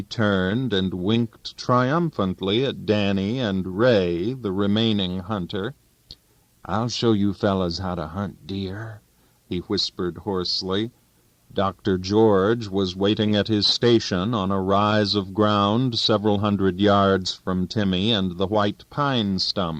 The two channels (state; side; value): identical; both; correlation 1.00